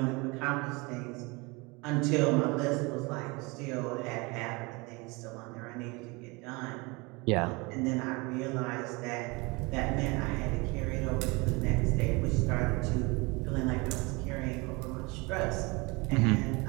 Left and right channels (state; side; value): quieter; left; 26.5 dB